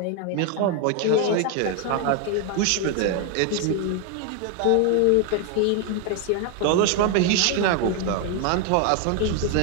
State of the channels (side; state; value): both; different; correlation 0.01